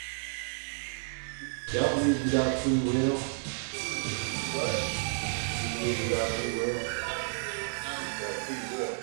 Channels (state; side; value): silent; left; 57 dB below the other